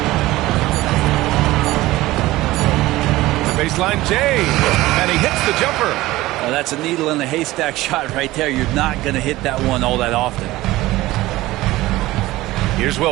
The baseline Jay. And he hits the jumper. That's a needle in the haystack shot right there. You're not going to hit that one all that often. Here's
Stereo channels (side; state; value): left; quieter; 17.8 dB